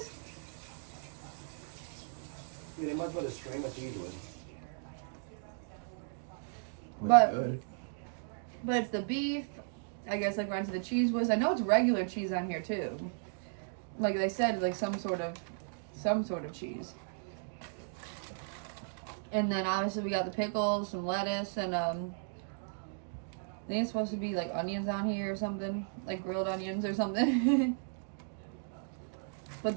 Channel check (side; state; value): left; silent; digital silence